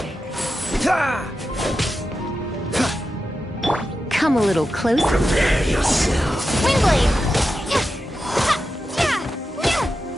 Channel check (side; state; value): both; normal; correlation 0.90